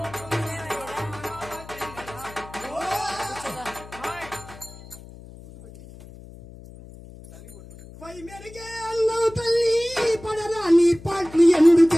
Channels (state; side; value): noise; left; hum, 18 dB below the sound